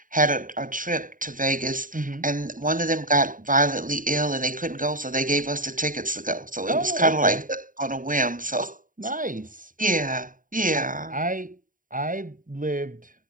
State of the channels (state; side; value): late; left; 0.39 ms